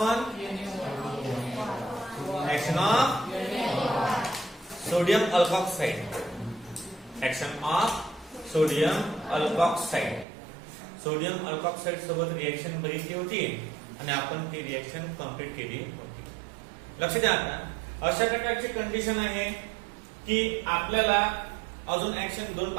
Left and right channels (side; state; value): left; drops out; at 10.2 s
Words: action of sodium alkoxide, action of sodium alkoxide. Sodium alkoxide सोबत रिएक्शन बघितली होती आणि आपण ती रिएक्शन कंप्लीट केली होती. लक्ष द्या. आता अशा प्रकारची कंडिशन आहे की आपल्याला अजून ऍक्शन दोन